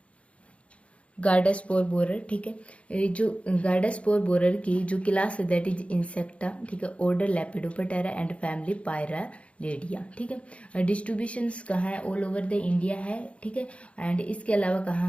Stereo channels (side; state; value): right; late; 0.062 ms